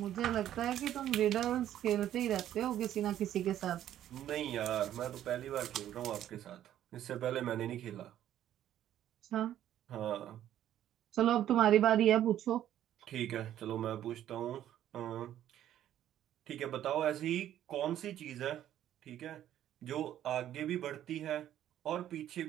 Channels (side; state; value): left; quieter; 11.6 dB